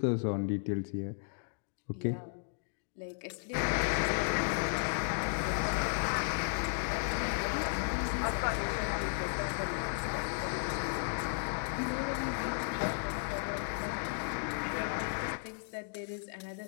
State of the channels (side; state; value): right; silent; digital silence